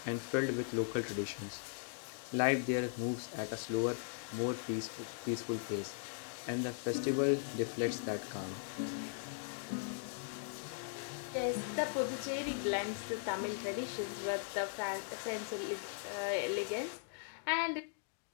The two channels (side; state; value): right; silent; digital silence